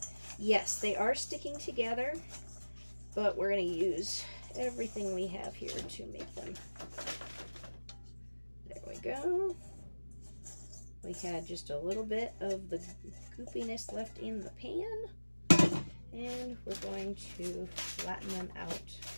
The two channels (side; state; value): both; inverted; correlation -1.00